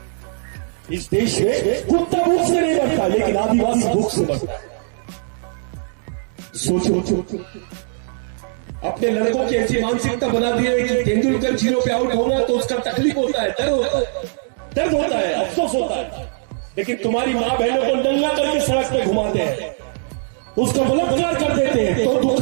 इस देश में कुत्ता भूख से नहीं मरता, लेकिन आदिवासी भूख से मरता है। सोचो, अपने लड़कों की ऐसी मानसिकता बना दी है कि तेंदुलकर 0 पे आउट होगा तो उसका तकलीफ होता है, दर्द होता है, अफसोस होता है। लेकिन तुम्हारी माँ बहनों को नंगा करके सड़क पे घुमाते हैं, उसका बलात्कार कर देते हैं तो दुख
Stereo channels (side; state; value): left; silent; digital silence